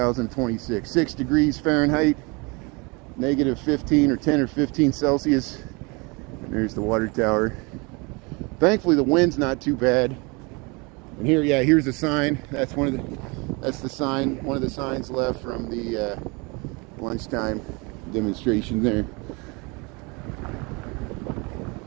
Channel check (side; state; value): left; quieter; 28.5 dB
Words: 6 degrees Fahrenheit, negative 15 or 10 or 15 Celsius. And there's the water tower. Thankfully, the wind's not too bad. And here's the sign. That's one of the signs left from the lunchtime demonstration there.